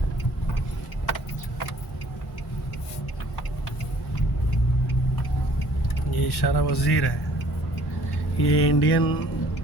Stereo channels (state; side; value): normal; both; correlation 0.56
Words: ये इशारा वज़ीर है, ये इंडियन